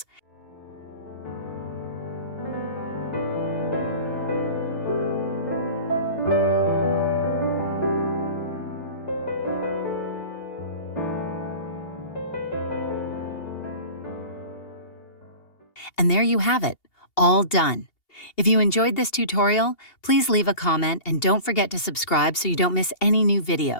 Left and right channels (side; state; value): right; late; 2.8 ms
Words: And there you have it, all done. If you enjoyed this tutorial, please leave a comment and don't forget to subscribe so you don't miss any new